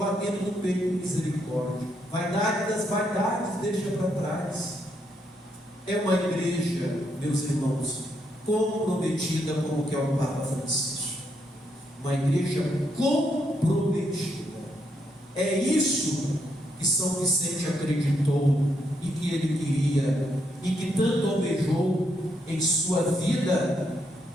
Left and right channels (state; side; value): normal; both; correlation 0.77